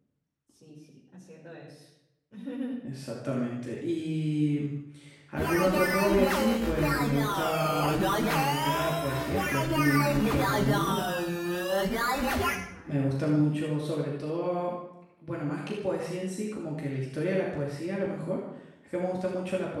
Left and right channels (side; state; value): both; identical; correlation 1.00